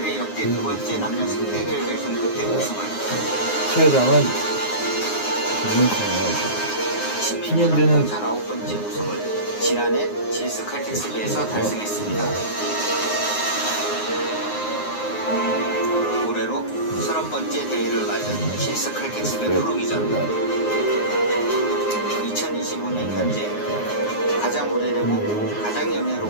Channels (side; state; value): right; late; 9.6 ms